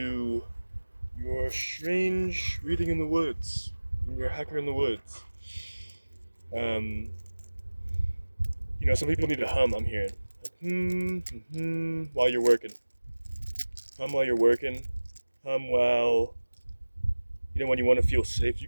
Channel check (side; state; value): both; inverted; correlation -1.00